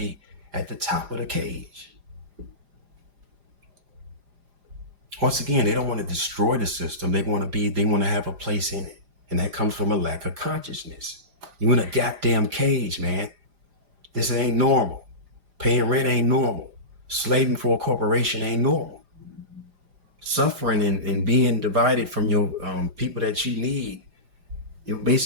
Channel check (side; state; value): left; late; 4.9 ms